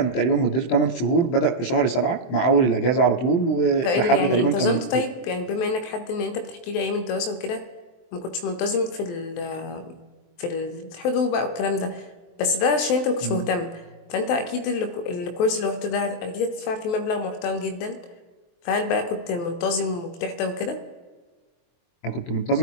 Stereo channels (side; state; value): right; late; 23 ms